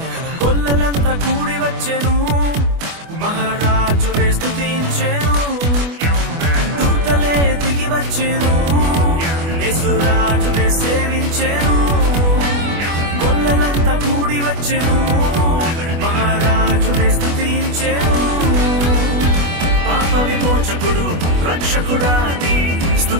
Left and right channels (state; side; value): late; left; 24 ms